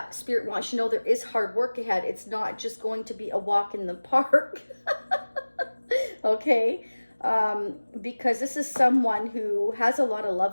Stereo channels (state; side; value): inverted; both; correlation -1.00